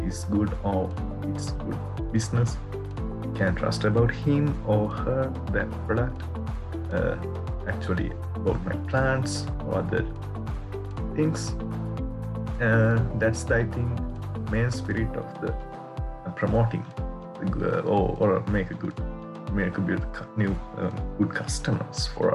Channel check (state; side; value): identical; both; correlation 1.00